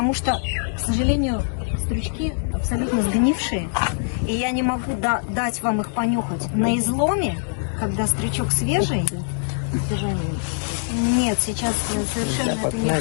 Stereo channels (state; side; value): silent; right; digital silence